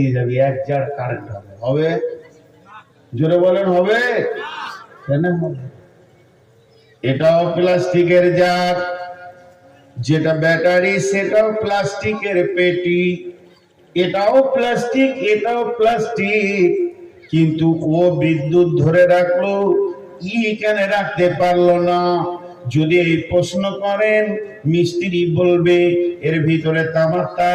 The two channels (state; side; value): identical; both; correlation 1.00